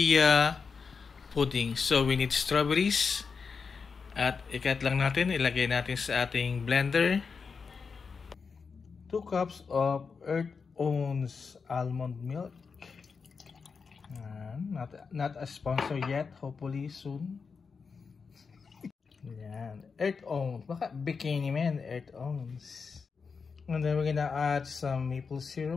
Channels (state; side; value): quieter; right; 5.3 dB